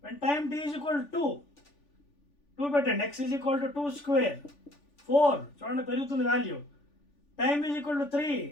when time t is equal to 2 పెట్టండి, x ఈజ్ ఈక్వల్ టు 2 స్క్వేర్ 4, చూడండి పెరుగుతుంది value. Time is equal to 3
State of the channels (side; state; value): right; late; 3.4 ms